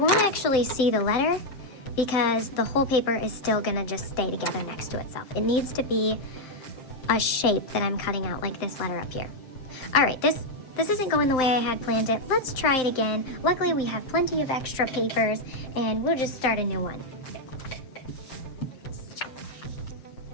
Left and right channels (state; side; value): late; right; 7.8 ms